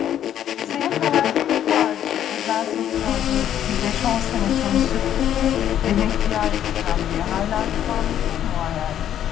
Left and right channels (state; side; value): quieter; right; 10.6 dB